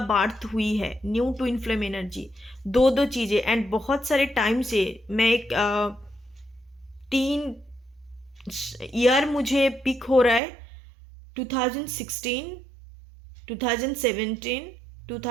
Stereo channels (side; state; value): left; drops out; at 10.4 s